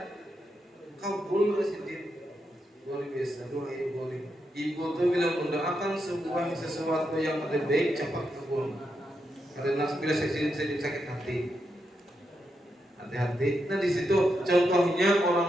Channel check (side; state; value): both; normal; correlation 0.84